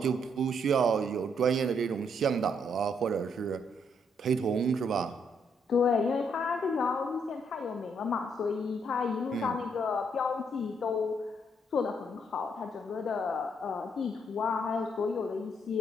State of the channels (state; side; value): normal; both; correlation 0.73